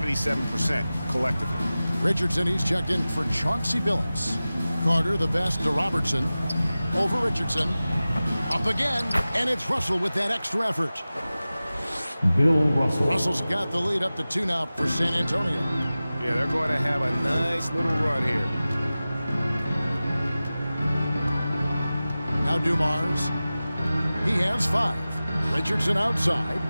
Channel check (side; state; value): both; inverted; correlation -0.96